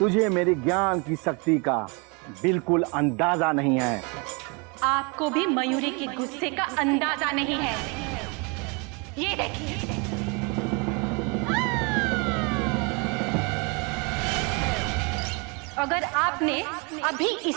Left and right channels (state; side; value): quieter; left; 31.3 dB